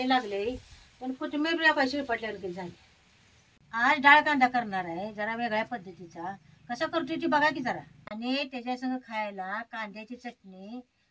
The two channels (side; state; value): both; identical; correlation 1.00